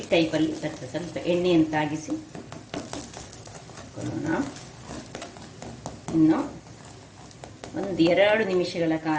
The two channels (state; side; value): identical; both; correlation 1.00